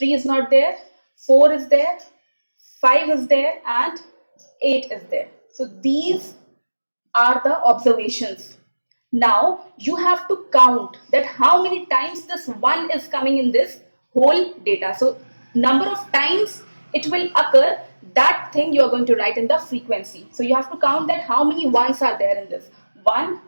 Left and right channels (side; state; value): both; inverted; correlation -1.00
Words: is not there, 4 is there, 5 is there, and 8 is there. So these are the observations. Now you have to count that how many times this 1 is coming in this whole data. So number of times it will occur, that thing you are going to write in the frequency. So you have to count that how many ones are there in this. 1,